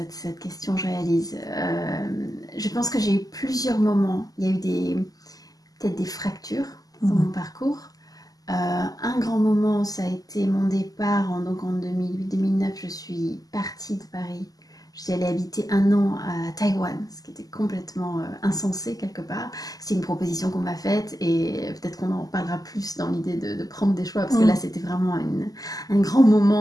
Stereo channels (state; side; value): late; right; 0.17 ms